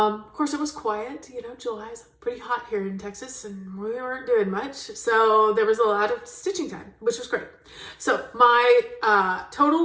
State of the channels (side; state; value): both; identical; correlation 1.00